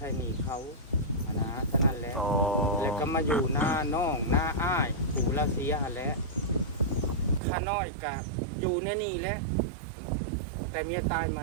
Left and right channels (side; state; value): left; drops out; at 7.4 s